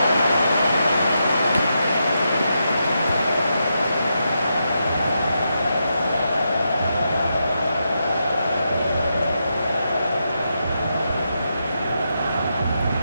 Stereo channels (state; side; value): inverted; both; correlation -0.84